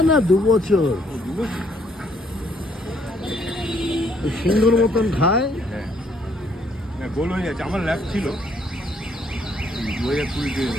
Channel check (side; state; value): both; normal; correlation 0.67